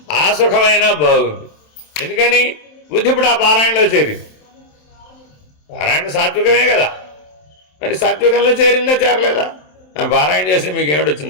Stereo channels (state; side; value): late; right; 27 ms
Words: ఆ సుఖమైనా బాగుంది. ఎందుకని బుద్ధి ఇప్పుడు ఆ పారాయణలో చేరింది. పారాయణ సాత్వికమే కదా, మరి సాత్వికంలో చేరిందా చేరలేదా? పారాయణ చేసి మీకు